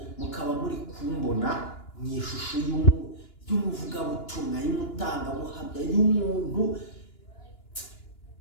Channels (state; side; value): late; right; 2.9 ms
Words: mukaba muri kumbona mu ishusho y'umuvugabutumwa, y'umutangabuhamya, y'umuntu.